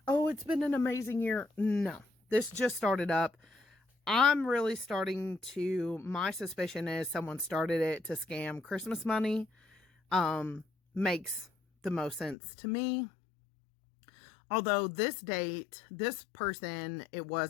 oh, it's been an amazing year. No, this just started up. I'm really starting to, my suspicion is someone started it to scam Christmas money. Makes the most sense to me. Although this date, this person, it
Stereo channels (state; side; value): drops out; right; at 12.4 s